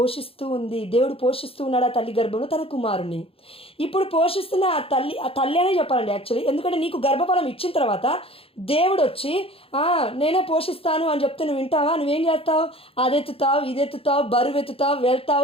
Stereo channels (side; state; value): right; late; 0.27 ms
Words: ఉంది, దేవుడు పోషిస్తూ ఉన్నాడు ఆ తల్లి గర్భంలో తన కుమారుని. ఇప్పుడు పోషిస్తున్న ఆ తల్లి అనే చెప్పాలండి యాక్చువల్లీ. ఎందుకంటే నీకు గర్భఫలం ఇచ్చిన తర్వాత దేవుడు వచ్చి నేనే పోషిస్తాను అని చెప్తే నువ్వు వింటావా? నువ్వేం చేస్తావు? అదెత్తుతావు, ఇదెత్తుతావు, బరువు ఎత్తుతావు,